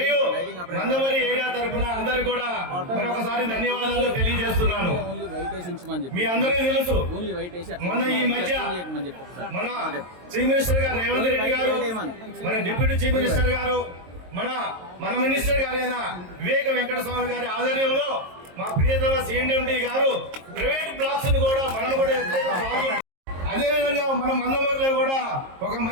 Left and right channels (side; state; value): left; late; 22 ms